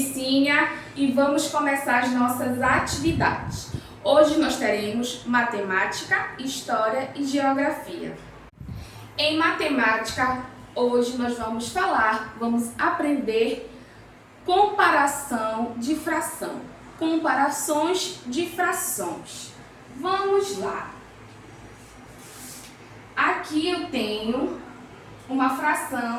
e vamos começar as nossas atividades. Hoje nós teremos matemática, história e geografia. Em matemática, hoje nós vamos aprender comparação de fração, comparações de frações. Vamos lá. Aqui eu tenho uma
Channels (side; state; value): both; identical; correlation 1.00